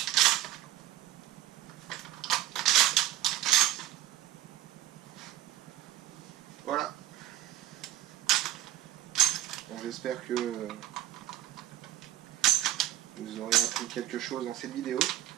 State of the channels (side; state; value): left; quieter; 13.8 dB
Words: Voilà. Bon, j'espère que vous aurez appris quelque chose dans cette vidéo.